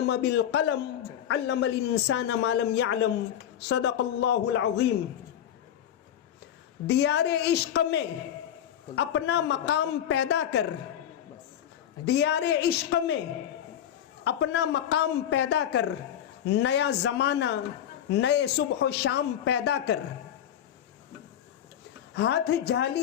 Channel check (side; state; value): right; quieter; 10.2 dB